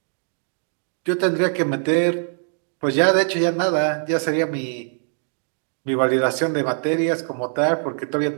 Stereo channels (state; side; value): silent; left; digital silence